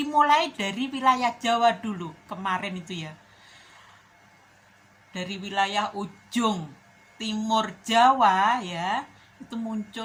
dari wilayah Jawa dulu kemarin itu ya, dari wilayah ujung timur Jawa ya, itu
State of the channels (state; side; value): identical; both; correlation 1.00